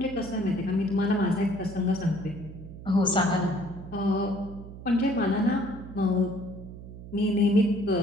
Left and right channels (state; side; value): noise; right; hum, 14 dB below the sound